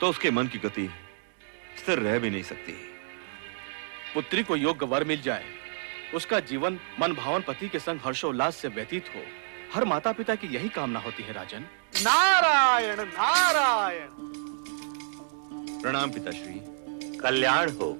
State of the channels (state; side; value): silent; left; digital silence